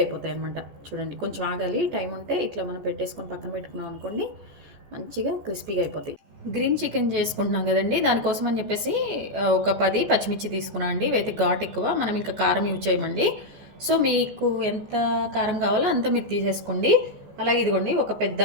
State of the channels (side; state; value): left; late; 14 ms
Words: అయిపోతాయి అనమాట. చూడండి, కొంచెం ఆగాలి, టైం ఉంటే ఇట్లా మనం పెట్టేసుకొని పక్కన పెట్టుకున్నాం అనుకోండి మంచిగా క్రిస్పీగా అయిపోతాయి. గ్రీన్ చికెన్ చేసుకుంటున్నాం కదండి, దానికోసం అని చెప్పేసి ఒక 10 పచ్చిమిర్చి తీసుకున్నాం అండి. ఇవైతే ఘాట్ ఎక్కువ, మనం ఇంకా కారం యూజ్ చేయమండి. సో మీకు ఎంత కారం కావాలో అంత మీరు తీసేసుకోండి. అలాగే ఇదిగోండి, ఒక పెద్ద